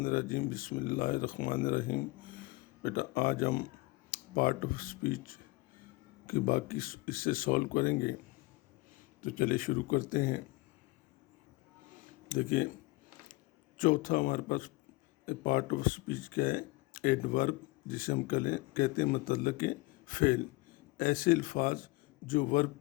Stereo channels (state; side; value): quieter; right; 22.8 dB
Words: الرجیم، بسم اللہ الرحمن الرحیم۔ بیٹا آج ہم پارٹ آف اسپیچ کی باقی اس سے سولو کریں گے، تو چلے شروع کرتے ہیں۔ دیکھیے چوتھا ہمارے پاس پارٹ آف اسپیچ کیا ہے؟ ایڈورب، جسے ہم کہتے ہیں متعلق فعل، ایسے الفاظ جو